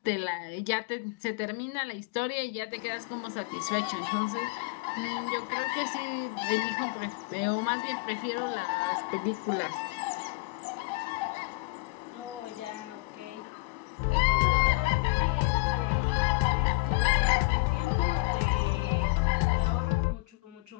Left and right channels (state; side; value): quieter; right; 25.9 dB